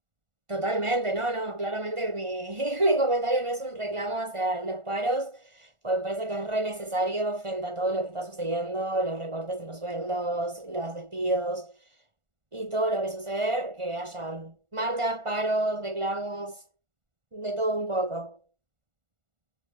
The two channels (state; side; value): late; left; 1.4 ms